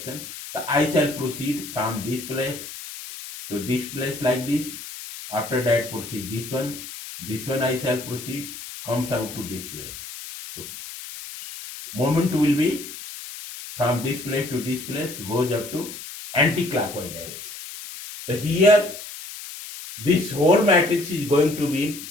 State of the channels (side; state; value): left; noise; hiss, 11 dB below the sound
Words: So I shall proceed from this place to this place like this. After that proceed this one I shall proceed, comes out to this place. So moment will be from this place to this place, goes up to anti-clockwise direction. So here this whole matrix is going to